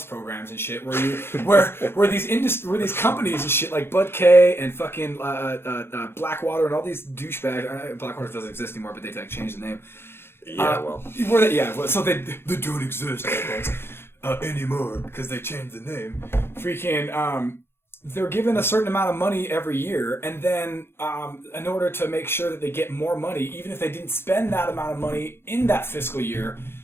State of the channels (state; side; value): late; right; 0.12 ms